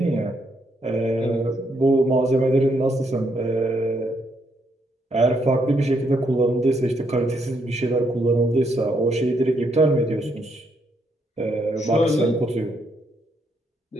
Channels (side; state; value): both; normal; correlation 0.75